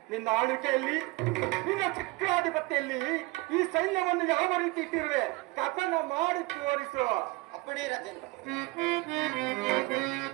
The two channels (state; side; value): quieter; left; 23.1 dB